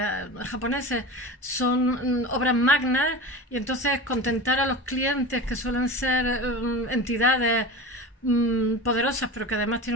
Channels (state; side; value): normal; both; correlation 0.31